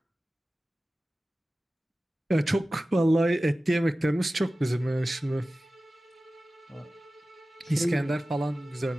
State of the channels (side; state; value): both; normal; correlation 0.96